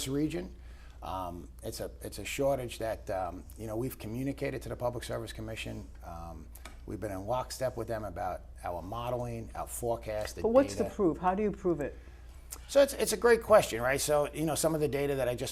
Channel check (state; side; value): identical; both; correlation 1.00